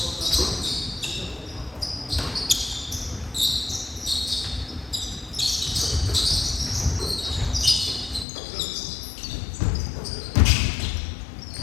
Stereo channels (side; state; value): right; drops out; at 8.2 s